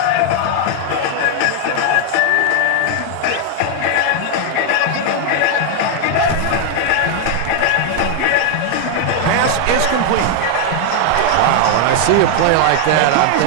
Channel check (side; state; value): both; different; correlation 0.00